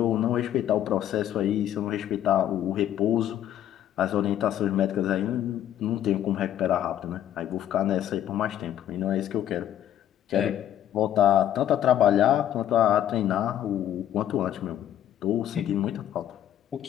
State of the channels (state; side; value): quieter; right; 11.2 dB